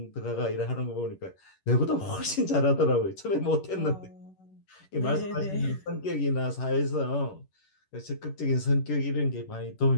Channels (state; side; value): late; right; 11 ms